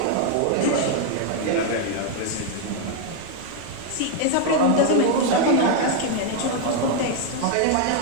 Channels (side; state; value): both; different; correlation 0.01